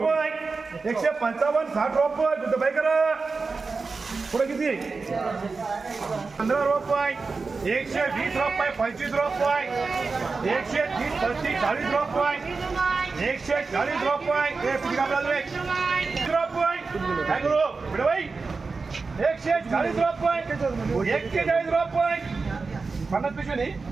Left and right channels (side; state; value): left; quieter; 4.3 dB